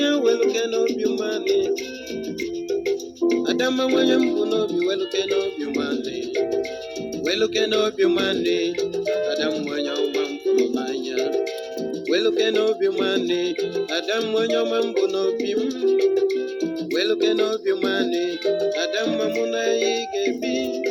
weluke n'obi mmanị Adamma nwanye mbụ n'obi weluke n'obi mmanị weluke n'obi mmanị Adam nwanye ọma mfụrụ n'anya weluke n'obi mmanị Adam onye ọma mbụ n'obi m weluke n'obi mmanị Adamma mụ na ya ga-ebi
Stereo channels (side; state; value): both; identical; correlation 1.00